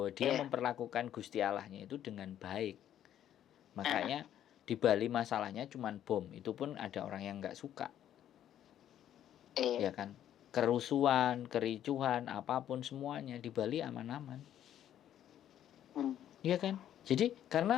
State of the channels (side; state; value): right; quieter; 10.9 dB